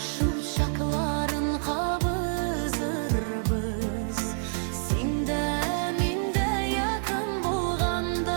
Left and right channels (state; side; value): silent; left; digital silence